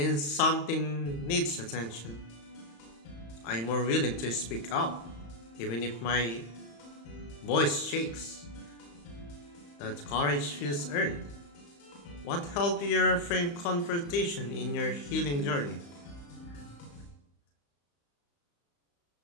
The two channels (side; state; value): right; late; 35 ms